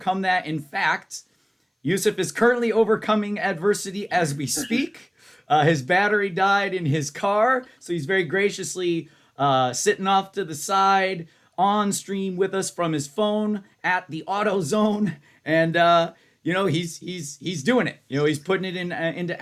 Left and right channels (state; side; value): identical; both; correlation 1.00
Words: that? In fact, Yoessef is currently overcoming adversity as we speak. His battery died in his car, so he's very graciously sitting off to the side on stream with us from his phone at the auto zone, and he's doing it. He's putting it into